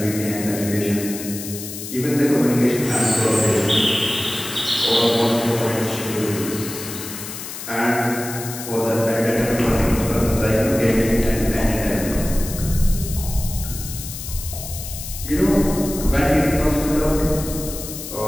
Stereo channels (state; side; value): noise; left; hiss, 9 dB below the sound